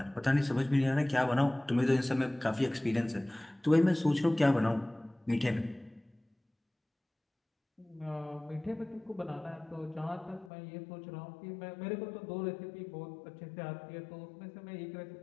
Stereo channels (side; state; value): right; drops out; at 10.5 s